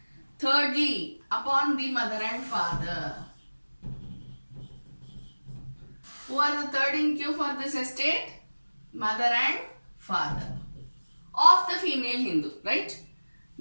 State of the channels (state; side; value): inverted; both; correlation -1.00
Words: Thirdly, upon the mother and father. Who are the third in queue for this estate? Mother and father. Of the female Hindu, right?